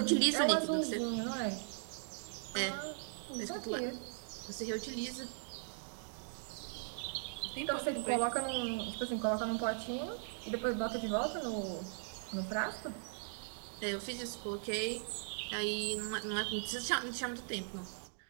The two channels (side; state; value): left; silent; digital silence